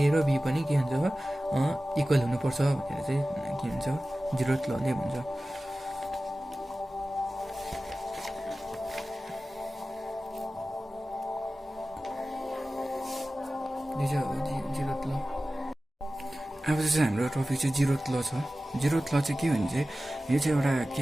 र बी पनि के हुन्छ, अब इक्वल हुनुपर्छ भनेर चाहिँ के भन्छ, 0th लले भन्छ। अब चाहिँ हाम्रो टपिक चाहिँ 0th ल छ। 0th ल चाहिँ के भने चाहिँ, यो चाहिँ एउटा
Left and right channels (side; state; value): both; normal; correlation 0.96